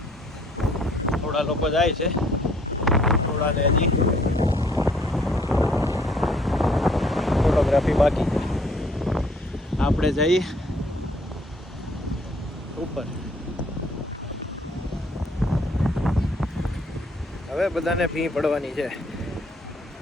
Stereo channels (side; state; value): both; normal; correlation 0.62